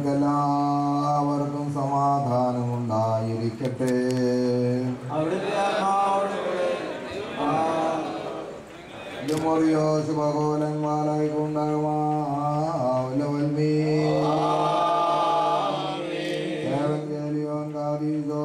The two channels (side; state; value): both; identical; correlation 1.00